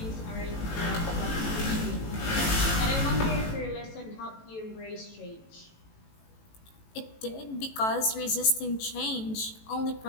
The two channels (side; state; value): right; late; 18 ms